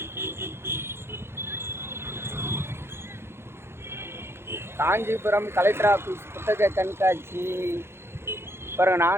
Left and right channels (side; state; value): left; late; 0.12 ms